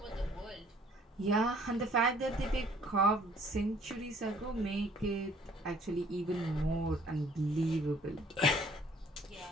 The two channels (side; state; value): both; normal; correlation 0.58